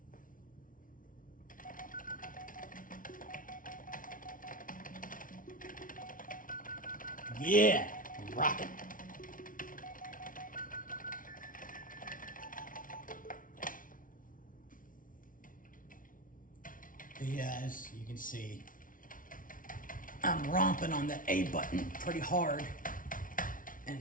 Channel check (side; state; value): right; late; 0.39 ms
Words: Yeah, rockin'. Yeah, as you can see, I'm romping on the A button pretty hard, and